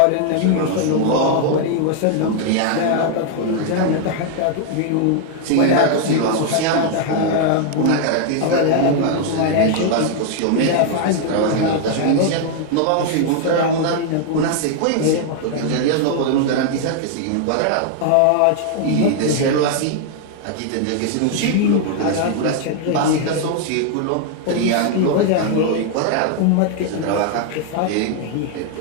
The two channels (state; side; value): different; both; correlation 0.00